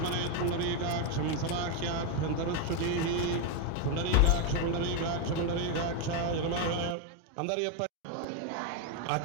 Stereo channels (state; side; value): different; both; correlation 0.01